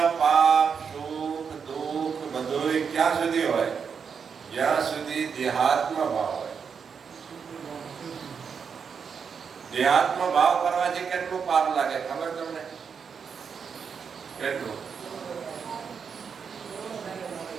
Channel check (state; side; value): quieter; left; 6.4 dB